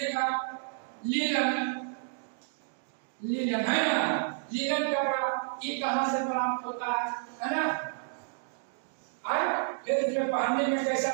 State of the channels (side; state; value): left; silent; digital silence